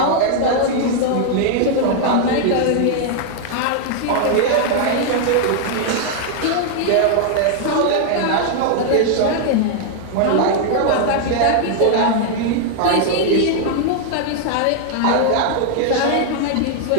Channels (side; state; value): both; different; correlation 0.00